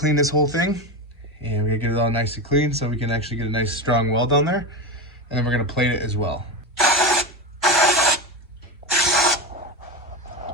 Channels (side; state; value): both; normal; correlation 0.18